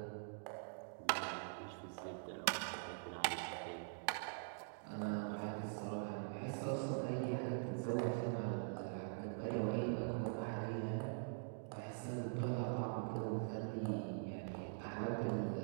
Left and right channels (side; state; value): left; silent; digital silence